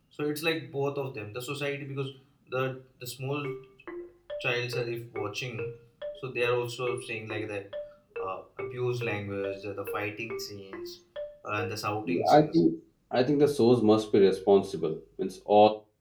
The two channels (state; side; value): identical; both; correlation 1.00